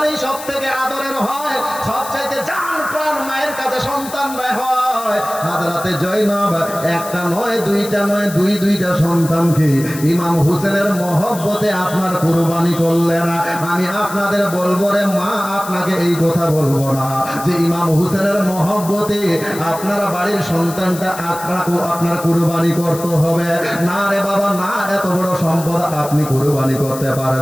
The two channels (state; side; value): noise; left; hiss, 13 dB below the sound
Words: সব থেকে আদরের হয়, সবচাইতে জান প্রাণ মায়ের কাছে সন্তানরা হয়। হাজরাতে জয়নাব একটা নয় দুইটা নয়, দুইটা সন্তানকে ইমাম হুসেনের মহব্বতে আপনার কুরবানি করলেন। আমি আপনাদের বলবো রে মা, আপনাকে এই কথা বলবো না যে ইমাম হুসেনের মহব্বতে আপনার বাড়ির সন্তানটা আপনার কুরবানি করতে হবে, না রে বাবা না, এত বড় সম্পদ আপনি কুরবানি করতে